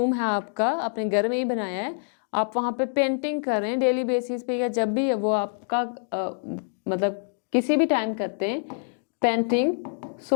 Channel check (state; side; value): silent; right; digital silence